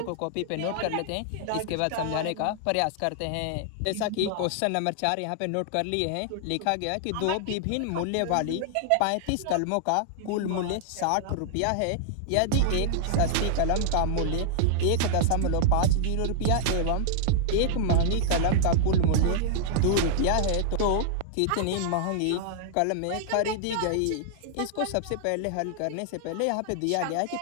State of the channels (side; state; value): both; different; correlation -0.01